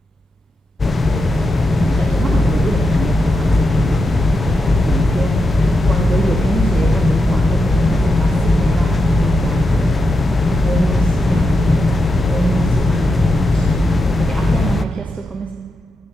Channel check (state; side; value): normal; both; correlation 0.86